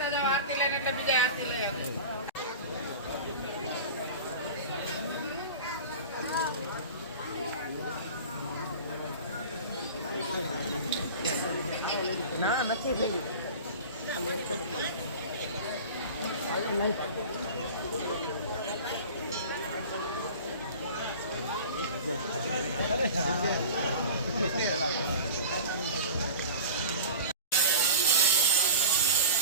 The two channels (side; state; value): both; inverted; correlation -0.36